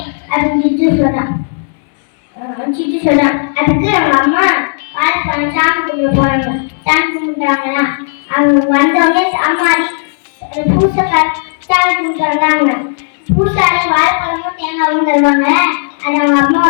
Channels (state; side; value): silent; right; digital silence